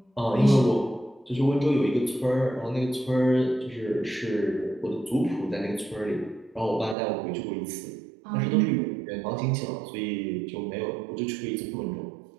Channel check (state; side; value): drops out; left; at 7.0 s